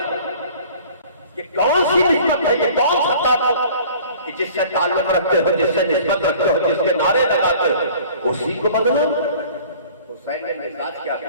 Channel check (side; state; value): both; inverted; correlation -0.48